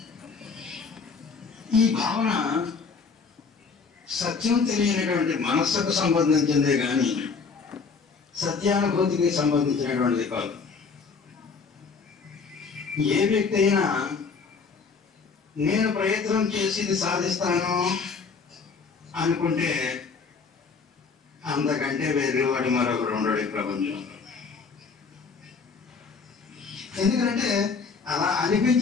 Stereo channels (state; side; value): quieter; right; 5.1 dB